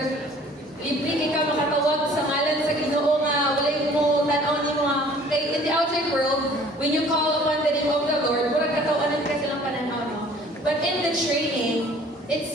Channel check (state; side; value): normal; both; correlation 0.52